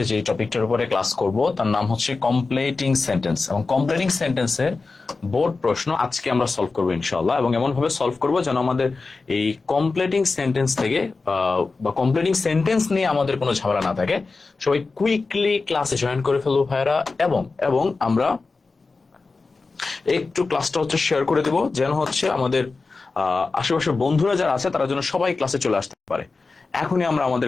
যে টপিকটার উপরে ক্লাস করব তার নাম হচ্ছে কমপ্লিটিং সেন্টেন্স, এবং কমপ্লিটিং সেন্টেন্সের বোর্ড প্রশ্ন আজকে আমরা সলভ করবো ইনশাআল্লাহ। এবং এমন ভাবে সলভ করব যেন আমাদের এই কমপ্লিটিং সেন্টেন্স থেকে বা কমপ্লিটিং সেন্টেন্স নিয়ে আমাদের কোনো ঝামেলা না থাকে। সবাই কুইকলি ক্লাসে জয়েন করে ফেলবো ভাইয়ারা, এবং এবং আমরা একটু ক্লাসটা হচ্ছে শেয়ার করে দেব যেন হচ্ছে আমাদের আশেপাশের বন্ধুরা যারা আছে তারা যেন সবাই ক্লাসে চলে আসতে পারে। এখনই আমরা আমাদের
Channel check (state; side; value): quieter; right; 4.0 dB